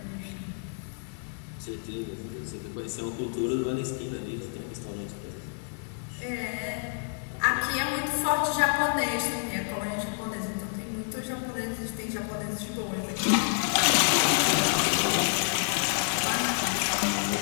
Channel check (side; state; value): right; silent; 59 dB below the other